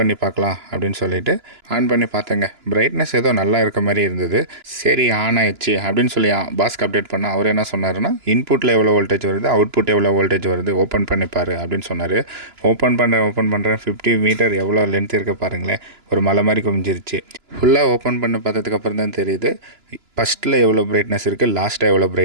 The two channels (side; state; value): left; late; 2.9 ms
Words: பார்க்கலாம் அப்படின்னு சொல்லிவிட்டு ஆன் பண்ணி பார்த்தேங்க. பிரைட்னஸ் ஏதோ நல்லா இருக்க மாதிரி இருந்தது. சரி, ஆன் ஆயிடுச்சு அப்படின்னு சொல்லி பாஸ்க்கு அப்டேட் பண்ணால் அவர் என்ன சொன்னார்னா, இன்புட்டில் எவ்வளோ வோல்டேஜ் வருது, அவுட்புட் எவ்வளோ வோல்டேஜ் வருது, ஓப்பன் பண்ணிப்பார் அப்படின்னு சொன்னார். ஓப்பன் பண்ணுறேன் 50 மீட்டர் எவ்வளோ லென்த் இருக்க பாருங்களேன். ஒரு மலை மாதிரி குமிஞ்சிருச்சு. ஃபுல்லாக ஓப்பன் பண்ணி பார்த்ததுக்கப்புறம் தான் தெரியுது ஃபஸ்ட்டில் எவ்வளோ பிரைட்னஸ் இருக்குது, லாஸ்ட்டாக எவ்வளோ